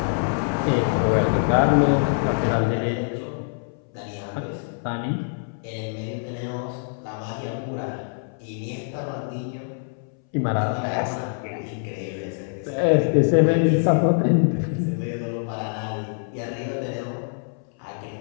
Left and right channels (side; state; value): right; silent; 62 dB below the other